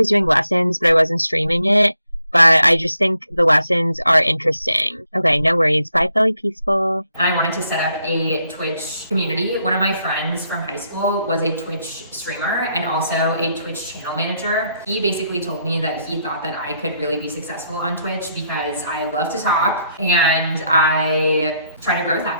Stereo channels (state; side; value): inverted; both; correlation -0.75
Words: doing lessons, but I wasn't streaming it. But I just think the lessons are interesting. Okay, no worries. Bye, Philly Peaceful. And I wanted to set up a Twitch community. One of my friends from high school was a Twitch streamer and also a Twitch channel manager. He basically told me that he thought that I could really be successful on Twitch because I love to talk and I try to growth